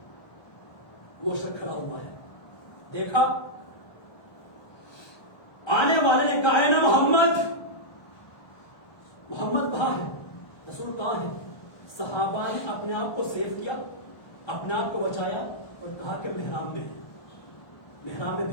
وہ شخص کھڑا ہوا ہے. دیکھا آنے والے نے کہا ہے نا محمد کہاں ہے، رسول کہاں ہے. صحابہ نے اپنے آپ کو سیو کیا، اپنے آپ کو بچایا اور کہا کہ محراب میں ہے. محراب میں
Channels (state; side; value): late; right; 1.3 ms